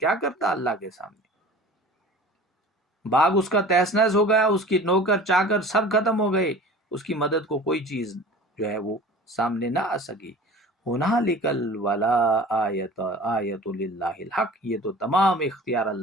کرتا اللہ کے سامنے؟ باغ اس کا تہس نہس ہو گیا، اس کی نوکر چاکر سب ختم ہو گئے، اس کی مدد کو کوئی چیز جو ہے وہ سامنے نہ آ سکی. ہنالکل ولا آیت للہ الحق، یہ تو تمام اختیار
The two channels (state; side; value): normal; both; correlation 0.41